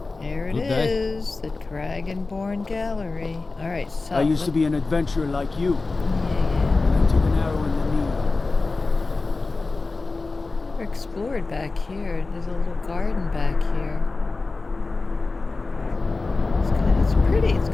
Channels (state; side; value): quieter; right; 3.7 dB